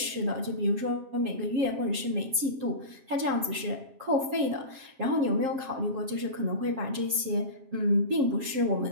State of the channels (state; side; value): late; left; 7.5 ms